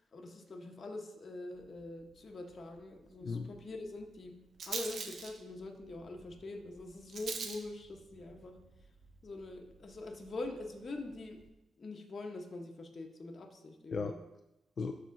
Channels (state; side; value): normal; both; correlation 0.85